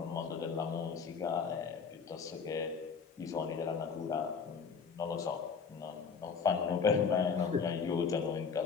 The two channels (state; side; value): quieter; right; 5.8 dB